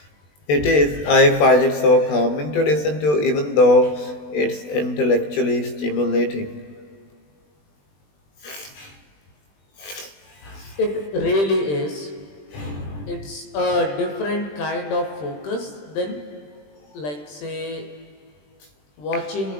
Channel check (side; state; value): right; late; 20 ms